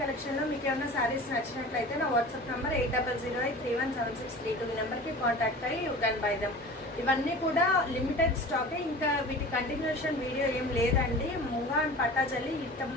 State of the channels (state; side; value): normal; both; correlation 0.38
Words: కలెక్షన్లో మీకు ఏమైనా శారీస్ నచ్చినట్లయితే నా వాట్సాప్ నెంబర్ 8008317632 ఈ నెంబర్కి కాంటాక్ట్ అయ్యి యూ కెన్ బై దమ్. ఇవన్నీ కూడా లిమిటెడ్ స్టాకే. ఇంకా వీటి కంటిన్యూషన్ వీడియో ఏం లేదండి. ముంగా అండ్ పట్టాజల్లి